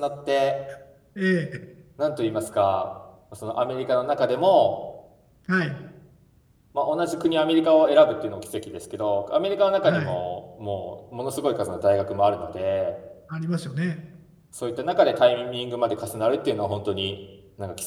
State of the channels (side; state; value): both; identical; correlation 1.00